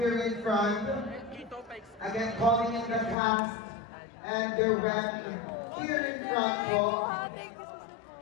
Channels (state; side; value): drops out; right; at 3.2 s